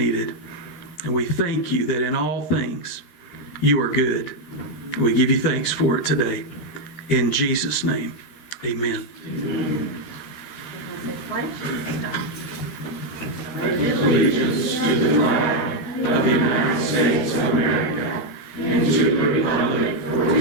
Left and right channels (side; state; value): right; late; 13 ms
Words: And we thank you that in all things, you are good. We give you thanks for it today. In Jesus' name, amen. Allegiance to the flag of the United States of America and to the republic for